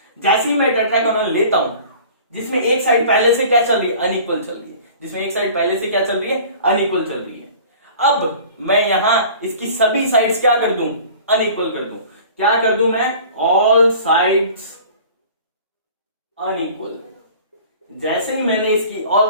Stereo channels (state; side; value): inverted; both; correlation -0.45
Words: जैसे ही मैं टेट्रागोनल लेता हूं, जिसमें एक साइड पहले से क्या चल रही है? अनइक्वल चल रही है, जिसमें एक साइड पहले से क्या चल रही है? अनइक्वल चल रही है। अब मैं यहां इसकी सभी साइड्स क्या कर दूं? अनइक्वल कर दूं। क्या कर दूं मैं? All sides unequal. जैसे ही मैंने इसकी ऑल